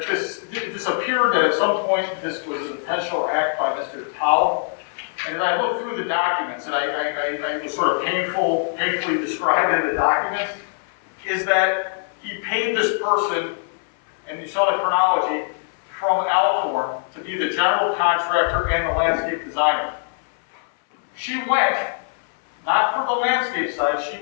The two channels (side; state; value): right; silent; 60 dB below the other